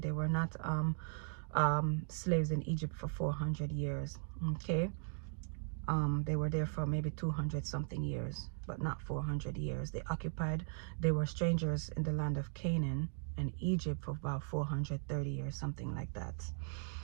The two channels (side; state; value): left; silent; 52 dB below the other